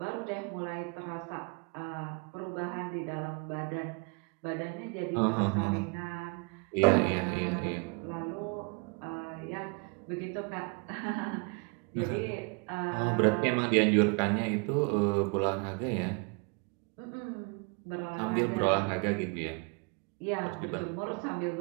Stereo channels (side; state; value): left; quieter; 32.6 dB